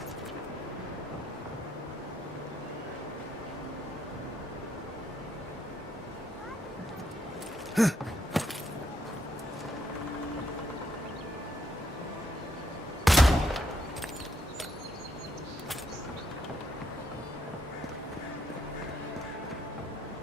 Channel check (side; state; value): both; normal; correlation 0.75